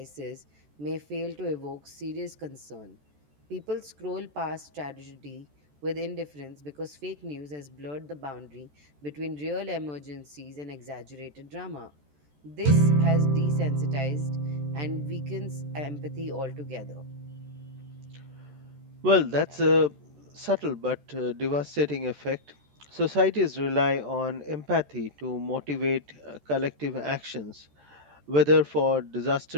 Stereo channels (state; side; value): late; left; 14 ms